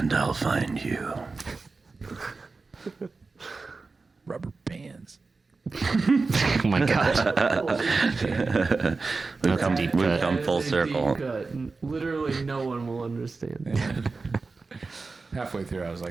I'll find you. Rubber bands. my god. We've come, deep we've cut. come full That is a circle. deep cut. Literally, no one will understand. Halfway through, I was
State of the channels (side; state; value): left; quieter; 4.0 dB